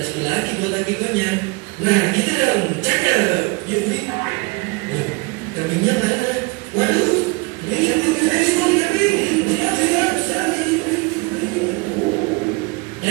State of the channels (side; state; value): left; quieter; 27.0 dB